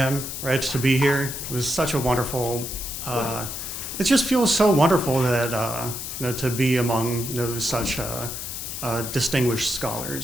right, to be here. It was such a wonderful, it just feels so wonderful that, to be among, such distinguished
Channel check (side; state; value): left; noise; hiss, 6 dB below the sound